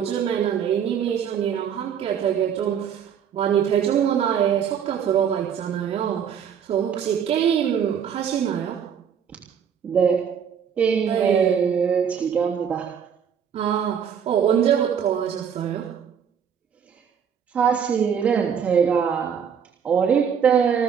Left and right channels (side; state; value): left; quieter; 7.8 dB